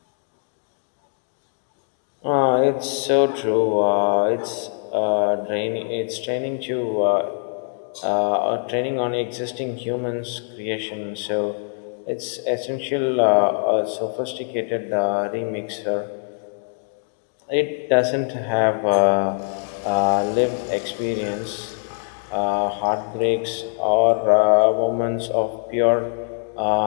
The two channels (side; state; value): right; silent; digital silence